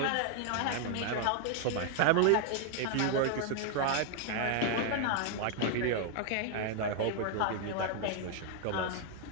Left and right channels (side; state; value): both; different; correlation 0.00